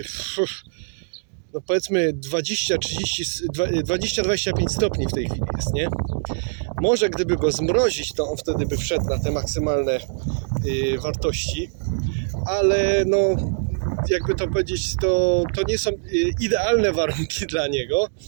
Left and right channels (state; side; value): silent; left; digital silence